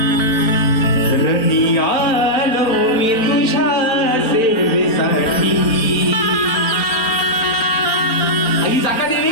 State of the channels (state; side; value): late; right; 4.0 ms